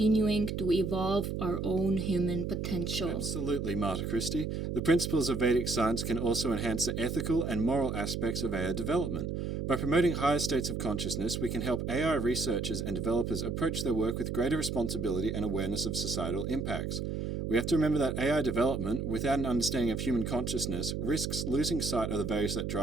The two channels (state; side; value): noise; right; hum, 3 dB below the sound